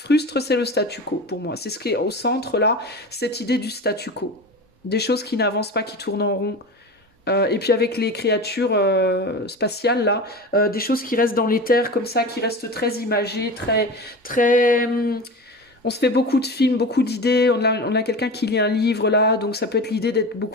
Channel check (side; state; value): both; normal; correlation 0.30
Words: c'est le statu quo, pour moi. C'est ce qui est au centre, là, cette idée du statu quo. Des choses qui n'avancent pas, qui tournent en rond. Et puis avec les créatures spatiales, là, des choses qui restent dans l'éther, comme ça, qui restent très imagées, très... On se fait beaucoup de films, beaucoup d'idées. On a quelqu'un qui lit un livre, là, donc ça peut être l'idée d'être